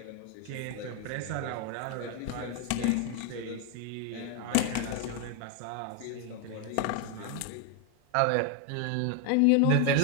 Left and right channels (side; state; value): both; different; correlation 0.01